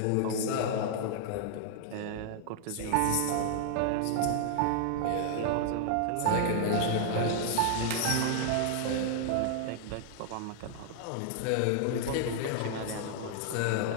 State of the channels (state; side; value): different; both; correlation 0.00